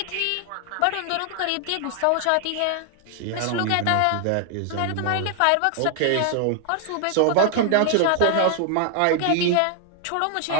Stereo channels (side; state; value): both; different; correlation 0.00